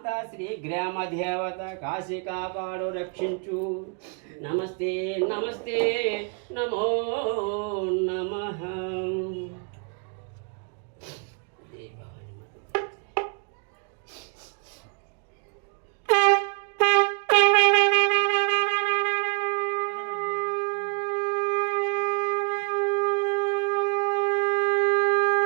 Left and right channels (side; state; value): left; quieter; 38.8 dB